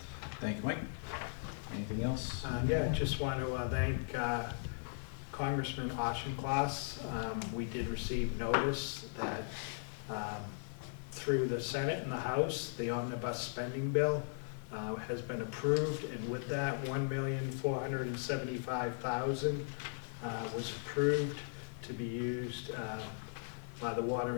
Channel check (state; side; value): silent; right; digital silence